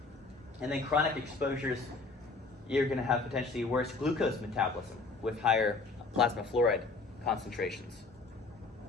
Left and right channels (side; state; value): right; quieter; 3.8 dB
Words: And then chronic exposures, you're going to have potentially worse glucose metabolism with higher plasma fluoride concentrations.